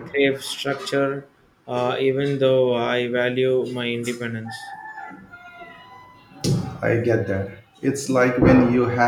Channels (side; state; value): both; identical; correlation 1.00